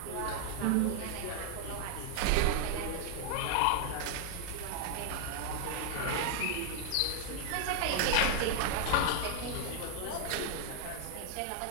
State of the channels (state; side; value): different; both; correlation 0.00